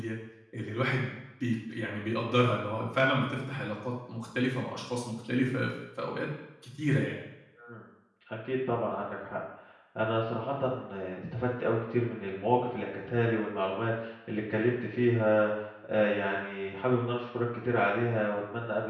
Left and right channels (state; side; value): identical; both; correlation 1.00